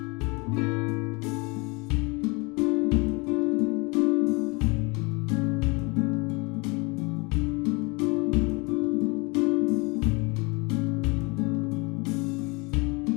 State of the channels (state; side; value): quieter; right; 28.3 dB